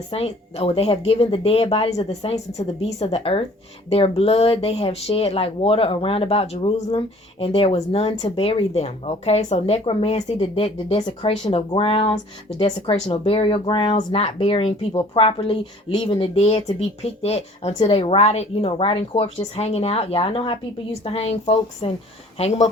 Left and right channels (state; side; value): normal; both; correlation 0.53